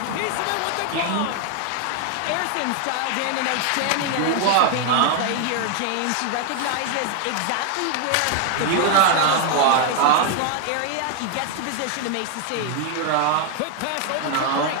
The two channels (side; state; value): both; different; correlation 0.00